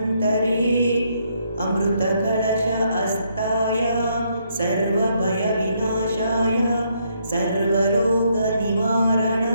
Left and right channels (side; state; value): both; inverted; correlation -0.73